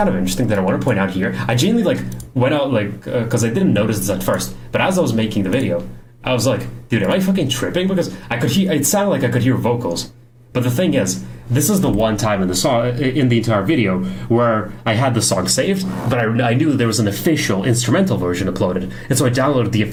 of interesting that I want to point out here. I genuinely like went out like because I didn't notice this at first, but as I was making the video, I was like, dude, am I fucking tripping? Because I could hear. It sounded like I could hear vocals. But the thing is, this is the one time in the song, in the entire video, where I had the song saved, but I knew there was an official instrumental version uploaded, and so I downloaded the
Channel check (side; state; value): both; identical; correlation 1.00